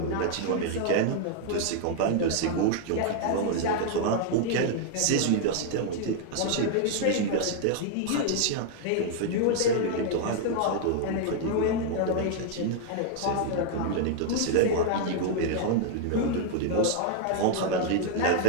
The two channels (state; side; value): different; both; correlation 0.00